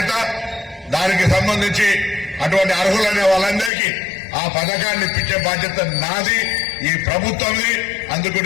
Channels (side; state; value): right; drops out; at 3.7 s